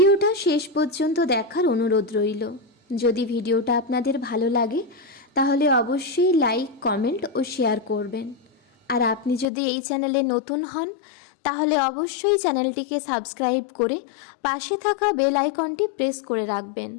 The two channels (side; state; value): right; drops out; at 9.5 s